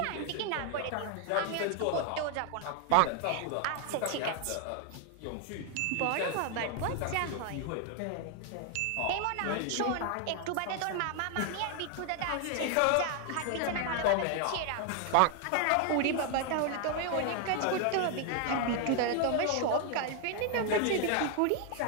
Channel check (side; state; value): both; different; correlation 0.00